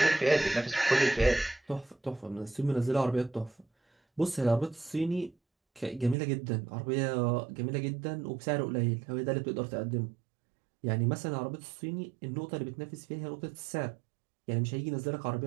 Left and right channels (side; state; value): left; drops out; at 6.2 s